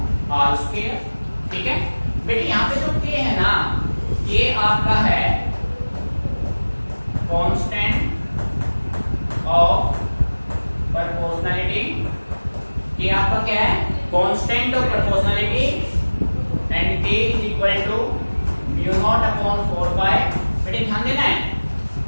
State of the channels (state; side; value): inverted; both; correlation -1.00